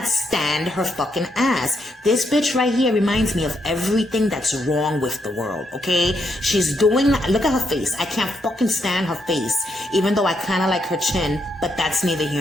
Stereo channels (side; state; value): both; normal; correlation 0.78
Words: stand her fucking ass. This bitch right here reminds me of everything that's wrong with the world, okay? She's doing, look at her face. I can't fucking stand her face, even though I kind of like her chin, but that's neither